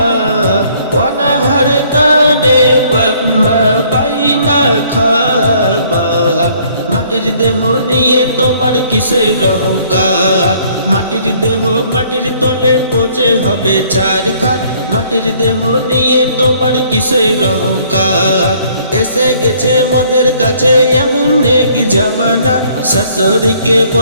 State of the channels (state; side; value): inverted; both; correlation -0.61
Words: অনাহারে কানে বাপ মা, পাই না খাবার। মাটির দেহ নিয়ে তোমার কিসের অহংকার। মাটির দেহ মাটির তলে পচে হবে ছারখার, মাটির দেহ নিয়ে তোমার কিসের অহংকার। এসে গেছে মদের কাছে এমন এক জামানা, শাশুড়িকে